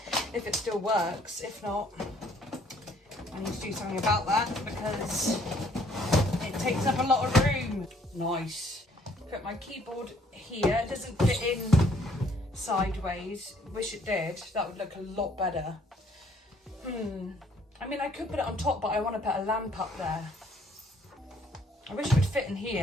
it still works. If not, I need to do something about that, because it takes up a lot of room. Nice. Put my keyboard here. It doesn't fit in sideways. Wish it did. That would look a lot better. I mean, I could put it on top, but I want to put a lamp up there. I wish it would fit in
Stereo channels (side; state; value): both; normal; correlation 0.63